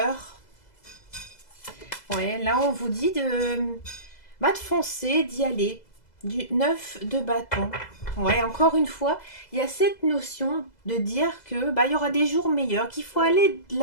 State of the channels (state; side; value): late; right; 2.0 ms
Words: Ouais, là, on vous dit de foncer, d'y aller. Du 9 de bâton. Ouais, encore une fois, il y a cette notion de dire que il y aura des jours meilleurs, qu'il faut aller de